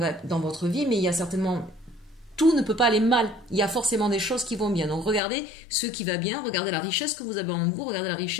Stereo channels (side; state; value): right; drops out; at 5.2 s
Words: votre vie, mais il y a certainement... Tout ne peut pas aller mal. Il y a forcément des choses qui vont bien. Donc regardez ce qui va bien, regardez la richesse que vous avez en vous, regardez la